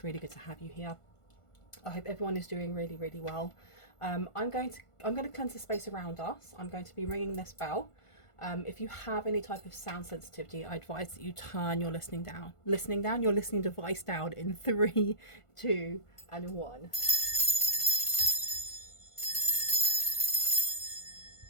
really good to have you here. I hope everyone is doing really, really well. I'm going to cleanse the space around us. I'm going to be ringing this bell. If you have any type of sound sensitivity, I advise that you turn your listening device down in 3, 2, and 1.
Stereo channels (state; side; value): late; right; 1.5 ms